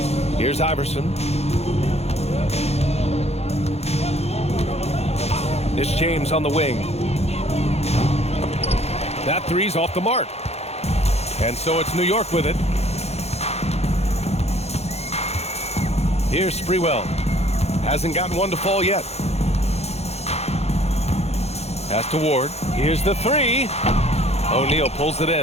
Here's Iverson. It's James on the wing. That 3's off the mark. And so it's New York with it. Here's Sprewell. Hasn't gotten one to fall yet. Pass to Ward. Here's the 3. O'Neal pulls it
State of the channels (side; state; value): right; late; 0.31 ms